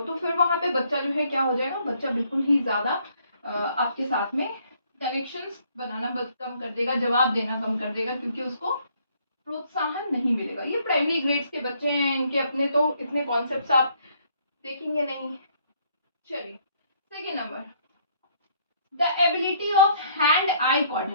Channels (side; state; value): both; inverted; correlation -0.65